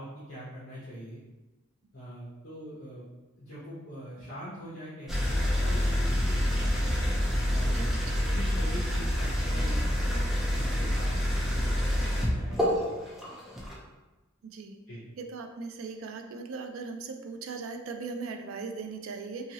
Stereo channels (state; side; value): normal; both; correlation 0.84